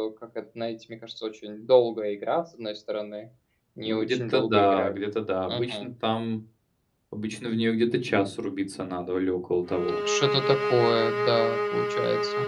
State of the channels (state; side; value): identical; both; correlation 1.00